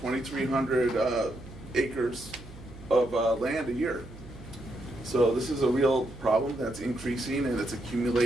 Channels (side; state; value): right; noise; hum, 17 dB below the sound